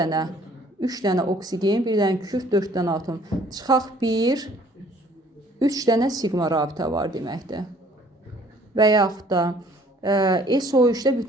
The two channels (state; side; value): normal; both; correlation 0.57